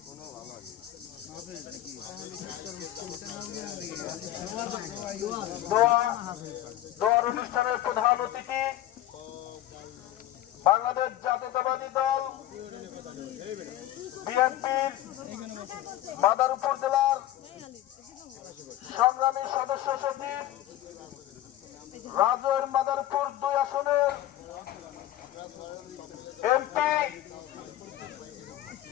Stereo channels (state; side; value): quieter; right; 13.5 dB